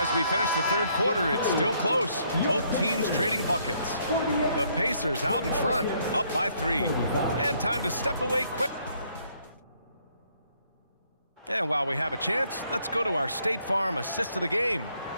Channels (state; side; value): inverted; both; correlation -0.68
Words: we finish the third quarter, it's still close. Both teams trading buckets. The Pacers out in front, up by 3. And time to step away quick. And while we have a chance, let's go to our State Farm assist of the game.